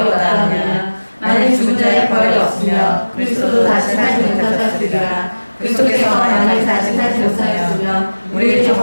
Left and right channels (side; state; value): both; inverted; correlation -1.00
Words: 없다 하느냐. 만일 죽은 자의 부활이 없으며 그리스도도 다시 살지 못하셨으리라. 그리스도께서 만일 다시 살지 못하였으면 우리의